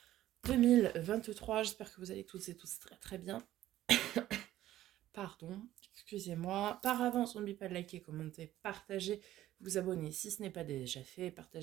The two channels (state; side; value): quieter; left; 13.8 dB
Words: 2023. J'espère que vous allez toutes et tous très très bien. Pardon, excusez-moi. Par avance, n'oubliez pas de liker, commenter, partager, vous abonner si ce n'est pas déjà fait,